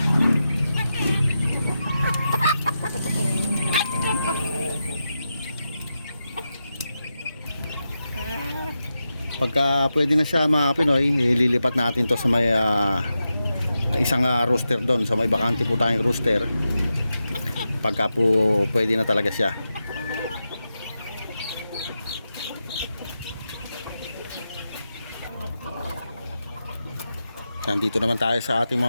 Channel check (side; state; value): both; inverted; correlation -0.89